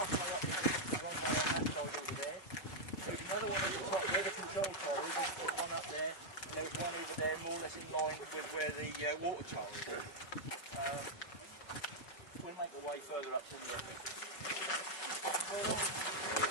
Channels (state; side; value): late; right; 5.3 ms